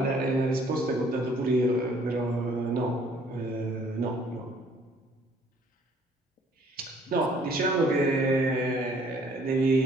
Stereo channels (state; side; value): normal; both; correlation 0.60